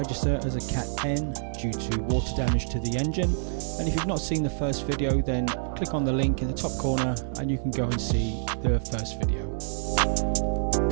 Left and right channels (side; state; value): left; silent; digital silence